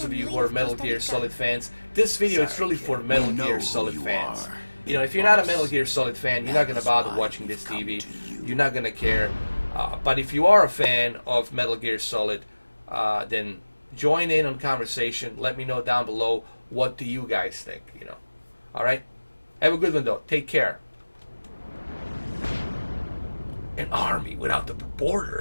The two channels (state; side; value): inverted; both; correlation -1.00